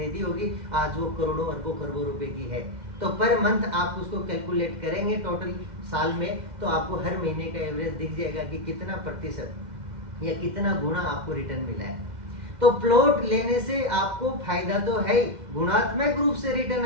होगी, आज वो करोड़ों अरबों खरबों रुपए की है। तो पर मंथ आप उसको कैलकुलेट करेंगे टोटल साल में, तो आपको हर महीने का एवरेज दिख जाएगा कि कितना प्रतिशत या कितना गुना आपको रिटर्न मिला है। तो प्लॉट लेने से आपको फायदा तो है ही, गुणात्मक रूप से रिटर्न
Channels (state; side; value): late; left; 2.1 ms